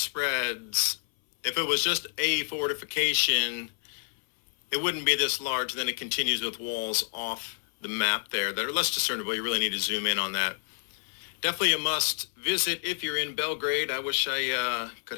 If it was just a fortification, it wouldn't be this large. Then it continues with walls off the map there that are less discernible. You really need to zoom in on that. Definitely a must visit if you're in Belgrade. I wish I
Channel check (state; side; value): silent; right; 59 dB below the other